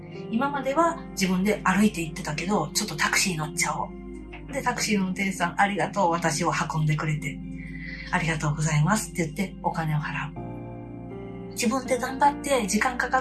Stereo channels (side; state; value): both; identical; correlation 1.00